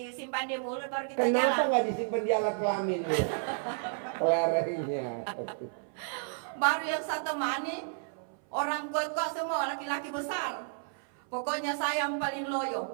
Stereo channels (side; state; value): left; silent; 57 dB below the other